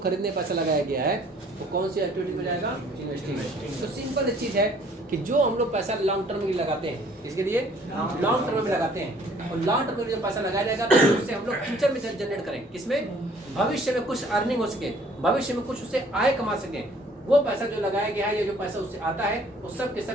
पैसा लगाया गया है वो कौन सी एक्टिविटी में जाएगा, इन्वेस्टिंग। तो सिंपल चीज़ है कि जो हम लोग पैसा लॉन्ग टर्म में लगाते हैं, इसके लिए लॉन्ग टर्म में लगाते हैं, और लॉन्ग टर्म में जो पैसा लगाया जाएगा तो उससे हम लोग फ्यूचर में जनरेट करें, किसमें, भविष्य में कुछ अर्निंग हो सके, भविष्य में कुछ उससे आय कमा सकें। वो पैसा जो लगाया गया है या जो पैसा उससे आता है वो सब के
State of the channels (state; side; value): normal; both; correlation 0.57